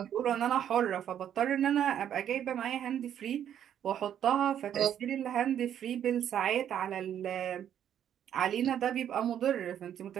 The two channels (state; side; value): quieter; left; 9.9 dB